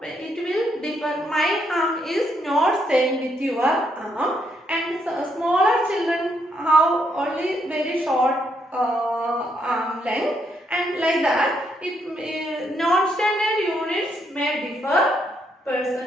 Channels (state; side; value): normal; both; correlation 0.75